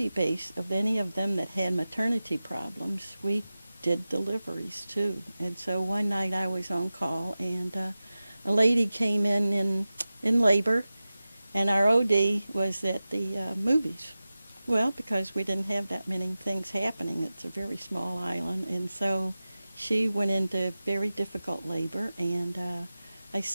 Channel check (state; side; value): inverted; both; correlation -0.95